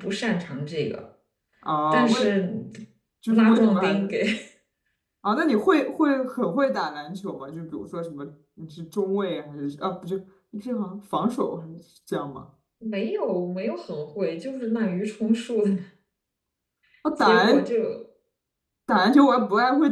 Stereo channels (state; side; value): identical; both; correlation 1.00